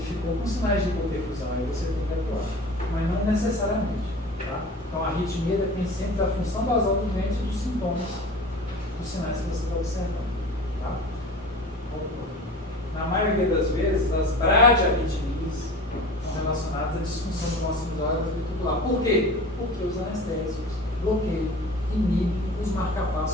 ficou com sinais de hipoperfusão, aí você tem que atuar. Mas não necessariamente. Tá? Então a arritmia depende sempre da função basal do doente e dos sintomas, dos sinais que você está observando. Tá? Na maioria das vezes, as bradiarritmias estão relacionadas à disfunção do nosso sinusal ventricular. Por quê? Porque os anestésicos bloqueiam, inibem os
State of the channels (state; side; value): normal; both; correlation 0.38